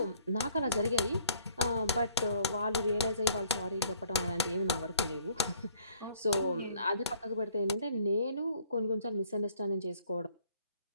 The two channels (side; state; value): both; inverted; correlation -0.60